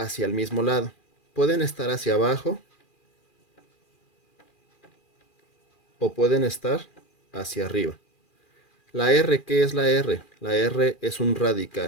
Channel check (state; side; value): late; right; 2.4 ms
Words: el mismo lado. Pueden estar hacia abajo o pueden estar hacia arriba. La R, ¿qué es la R? La R es un